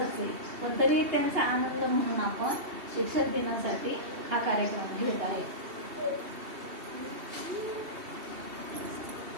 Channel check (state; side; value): late; left; 2.7 ms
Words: आहे, पण तरी त्यांचा आनंद म्हणून आपण शिक्षक दिनासाठी हा कार्यक्रम घेत आहे.